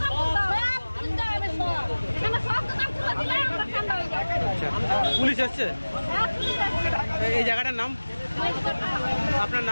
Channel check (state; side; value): inverted; both; correlation -1.00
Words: পুলিশ এসছে। এই জায়গাটার নাম, আপনার